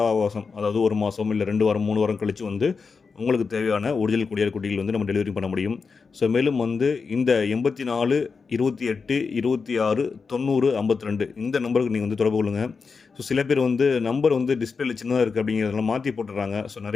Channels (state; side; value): quieter; right; 5.0 dB